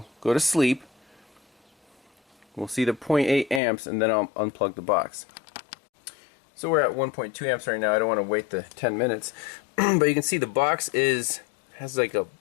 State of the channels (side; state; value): right; drops out; at 3.6 s